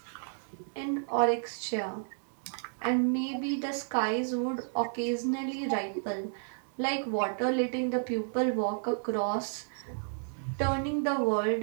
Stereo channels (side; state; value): left; silent; digital silence